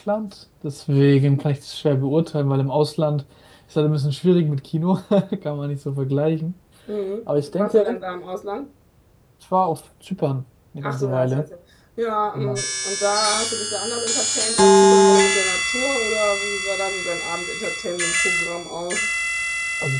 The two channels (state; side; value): identical; both; correlation 1.00